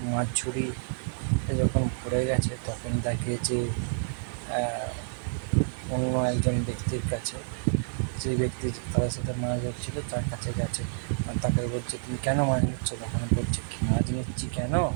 মাছ ঝুড়ি যখন ভরে গেছে তখন দেখে যে অন্য একজন ব্যক্তির কাছে, যে ব্যক্তি তাদের সাথে মাছ ধরছিল তার কাছে গেছে। আর তাকে বলছে, তুমি কেন মাছ নিচ্ছ? তখন বলছে, কি মাছ নিচ্ছি কেন,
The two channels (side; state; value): left; silent; 59 dB below the other